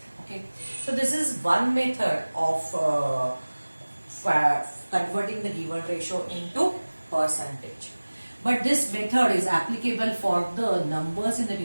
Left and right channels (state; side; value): inverted; both; correlation -1.00